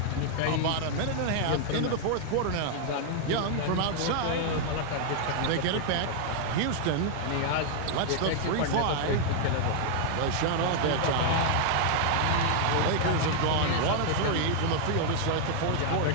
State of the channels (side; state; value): both; different; correlation 0.00